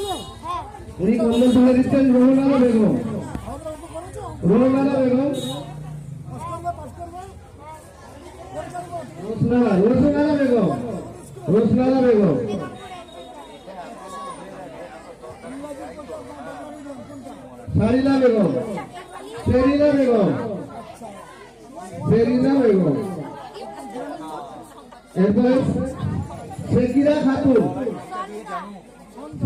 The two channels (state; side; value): identical; both; correlation 1.00